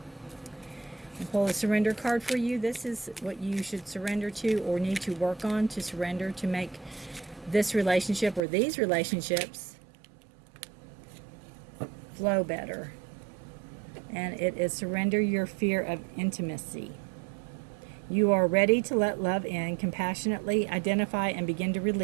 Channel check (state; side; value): drops out; left; at 8.4 s